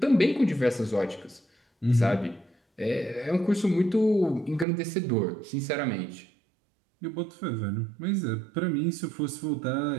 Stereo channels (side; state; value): left; drops out; at 4.7 s